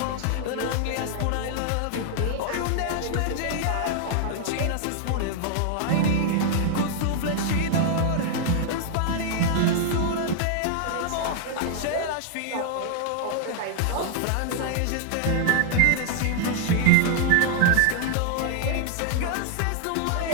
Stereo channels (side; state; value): both; different; correlation 0.00